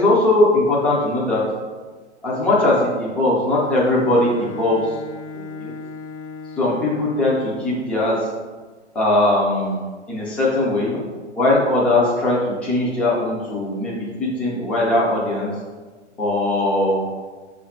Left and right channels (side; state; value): both; normal; correlation 0.39